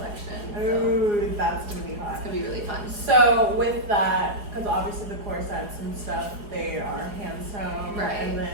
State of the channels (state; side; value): late; left; 4.8 ms